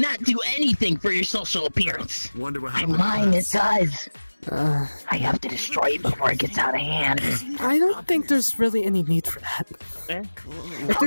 do anything for your social appearance. Wonder what And happened. mine, it does. I have to destroy it before it gets out of hand. I don't think there's really any need for that. How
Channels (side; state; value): both; inverted; correlation -1.00